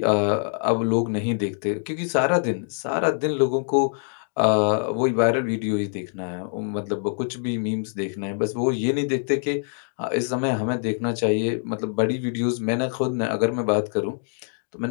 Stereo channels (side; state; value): right; silent; 62 dB below the other